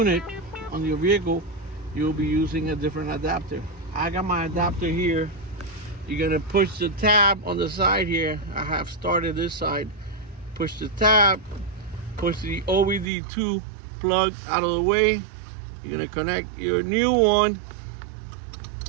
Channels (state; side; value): drops out; left; at 13.1 s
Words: on your vehicle, you'll be using a different adapter. I got my adapter here. You're gonna push the tab on the side here. I have started this side. Push the tab, push the OBD2 plug out of the way. You're gonna connect your new one,